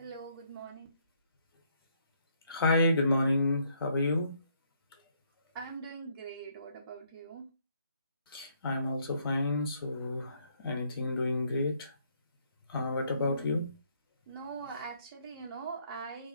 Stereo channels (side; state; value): both; inverted; correlation -0.70